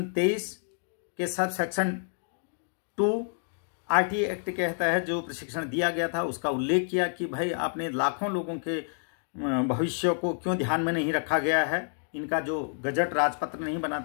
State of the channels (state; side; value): silent; right; digital silence